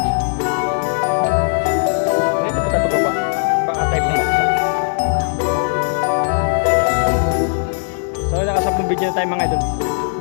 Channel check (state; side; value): silent; right; digital silence